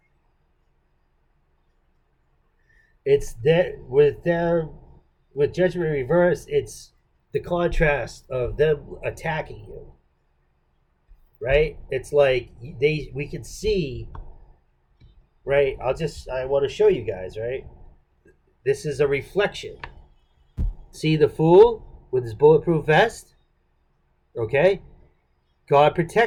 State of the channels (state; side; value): identical; both; correlation 1.00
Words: It's that with them, with Judgment Reverse, it's the contrast of them attacking you, right? It's like we can see, right? I want to show you guys, right? This is a reflection. See the fool with his bulletproof vest? Okay? God